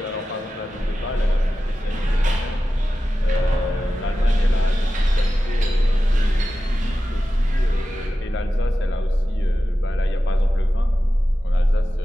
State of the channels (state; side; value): normal; both; correlation 0.93